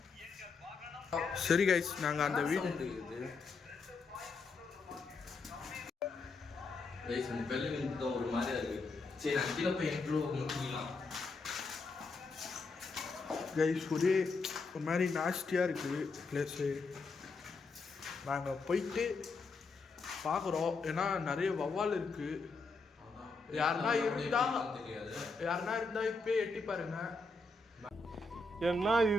சரி கைஸ் நாங்கள் அந்த வீடு ஒரு மாதிரியா இருக்கு. சரி நான் கீழே போய் முடிக்கலாம். கைஸ் ஒரே ஒரு மாதிரி நாஸ்டியாக இருக்குது பிளேஸு. நாங்கள் போயிட்டு பார்க்குறோம். ஏன்னா நிறைய வவ்வால் இருக்குது. யாருன்னா இருந்தா இப்போ எட்டி பாருங்க. என்ன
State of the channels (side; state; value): right; quieter; 3.9 dB